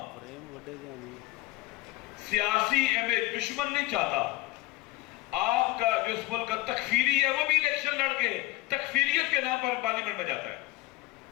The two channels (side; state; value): right; quieter; 19.1 dB